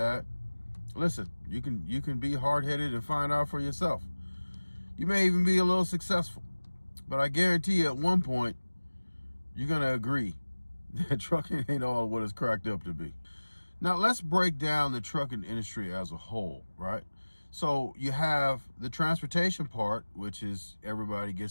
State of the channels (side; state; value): both; inverted; correlation -1.00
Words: listen, you can be hard-headed and find out for yourself. You may even be a little successful, but I guarantee you at one point, you're going to agree that trucking ain't all what it's cracked up to be. Now, let's break down the trucking industry as a whole, right? So you have the transportation part, which is everybody